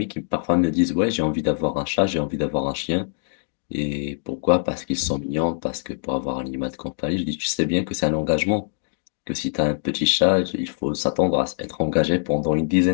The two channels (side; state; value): right; silent; digital silence